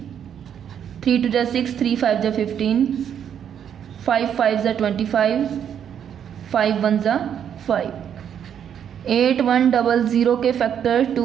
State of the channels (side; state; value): left; quieter; 8.8 dB